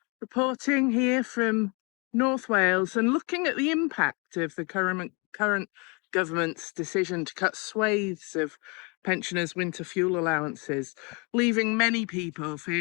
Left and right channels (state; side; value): quieter; right; 31.3 dB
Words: reporting here from North Wales and looking at the impact of the current government's decision to cut swathes of pensioners' winter fuel allowances, leaving many people